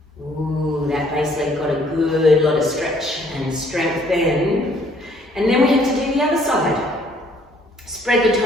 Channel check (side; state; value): both; normal; correlation 0.62